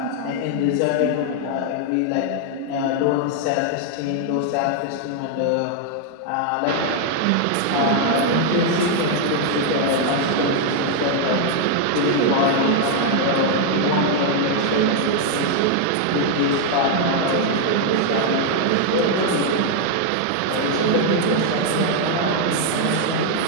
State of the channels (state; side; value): different; both; correlation 0.00